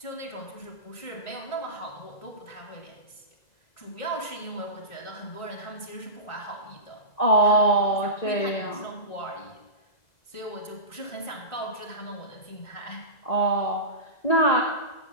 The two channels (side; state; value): right; late; 2.0 ms